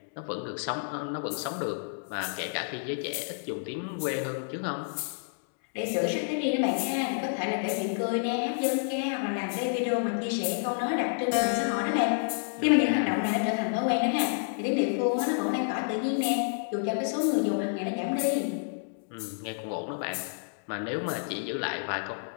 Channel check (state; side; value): silent; right; digital silence